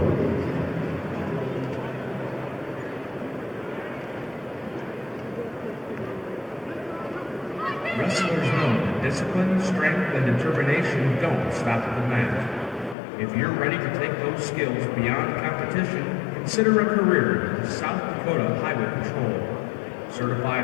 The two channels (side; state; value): right; drops out; at 13.0 s